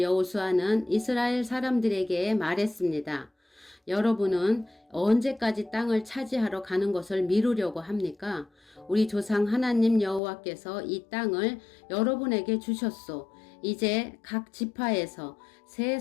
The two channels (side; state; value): right; drops out; at 10.2 s